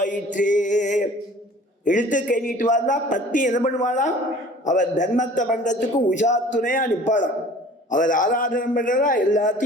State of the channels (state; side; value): normal; both; correlation 0.47